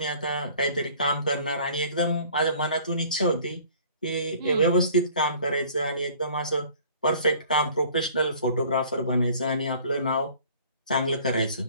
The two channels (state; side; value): inverted; both; correlation -0.51